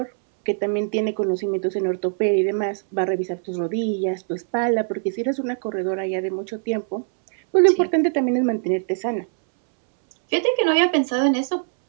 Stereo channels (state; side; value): silent; left; 64 dB below the other